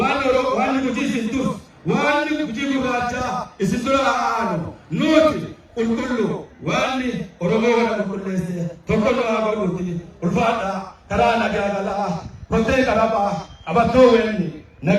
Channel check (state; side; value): identical; both; correlation 1.00